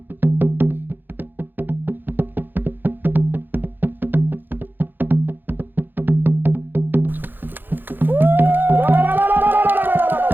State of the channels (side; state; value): left; late; 0.093 ms